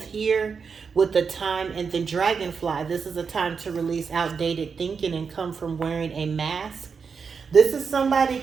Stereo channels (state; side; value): quieter; left; 5.7 dB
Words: here with the time and the dragonfly. This is a time to release outdated thinking and come from wearing a mask. This is somebody